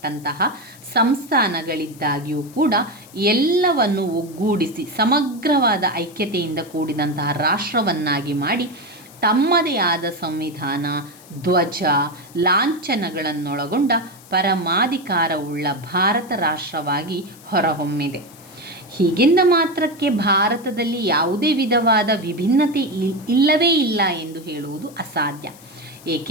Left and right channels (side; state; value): left; noise; hiss, 22 dB below the sound